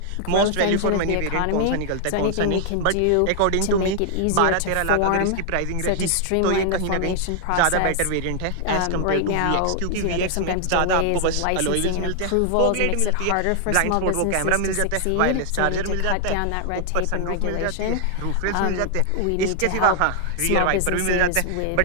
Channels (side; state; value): both; different; correlation 0.00